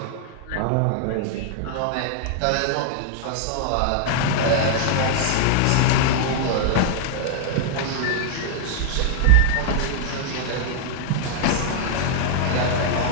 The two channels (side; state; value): both; different; correlation -0.01